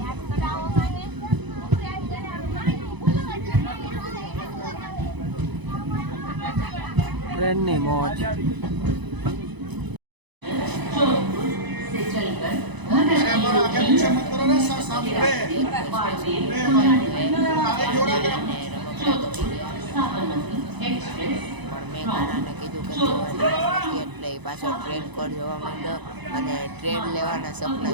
ટ્રેનની મોજ. એટલે પાછો ટ્રેન કોડ જોવા માંડ્યો અને ટ્રેન લેવાના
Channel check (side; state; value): left; late; 1.0 ms